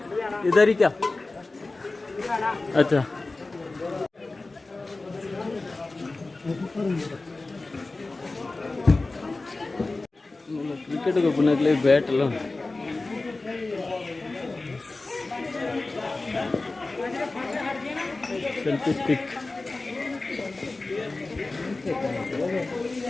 इधर ही क्या? अच्छा क्रिकेट को पुनः के लिए बैट लो सेल्फी स्टिक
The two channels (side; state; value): right; quieter; 3.3 dB